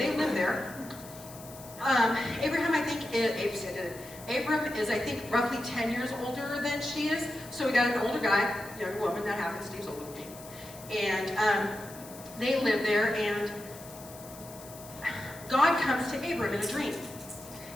live there. Abraham, I think, Abram is, I think, roughly 10 years older than she is. So we got an older guy, younger woman, that happens. Steve's older than me. And they live there, and God comes to Abram in a dream.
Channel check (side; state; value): left; noise; hiss, 17 dB below the sound